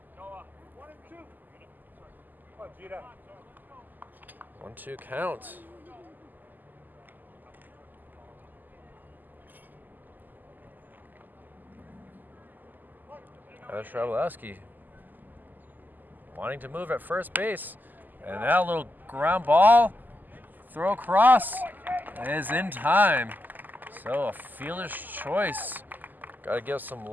1-2 count. Tyler Strabolowski wanting to move at first base. And that little ground ball, throw across, is in time. So a fielder's choice. Got to give some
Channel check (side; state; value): left; late; 0.086 ms